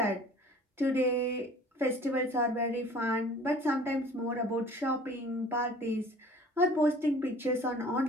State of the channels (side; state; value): both; normal; correlation 0.48